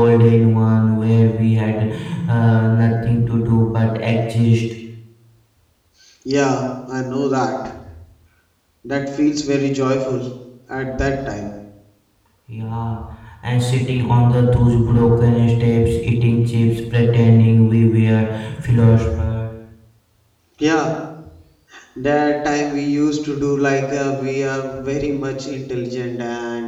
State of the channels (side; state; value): both; identical; correlation 1.00